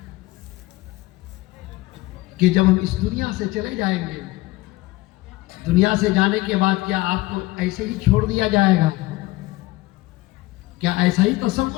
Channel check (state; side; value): quieter; right; 19.6 dB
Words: کہ جب ہم اس دنیا سے چلے جائیں گے دنیا سے جانے کے بعد کیا آپ کو ایسے ہی چھوڑ دیا جائے گا کیا ایسا ہی